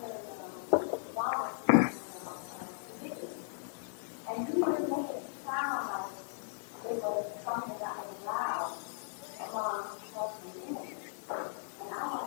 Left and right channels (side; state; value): right; silent; 53 dB below the other